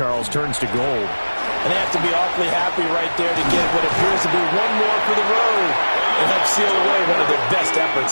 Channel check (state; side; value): inverted; both; correlation -1.00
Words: turns to gold. And they have to be awfully happy right there to get what appears to be one more for the road and help seal away one of their best